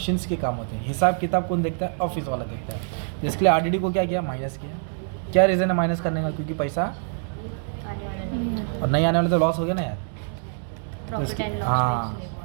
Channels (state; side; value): silent; left; 58 dB below the other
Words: के काम होते हैं। हिसाब किताब कौन देखता है, ऑफिस वाला देखता है। जिसके लिए RDD को क्या किया, माइनस किया। क्या रीज़न है माइनस करने का, क्योंकि पैसा आने वाला नहीं और नहीं आने वाला तो लॉस हो गया ना यार। तो प्रॉफिट एंड लॉस हाँ,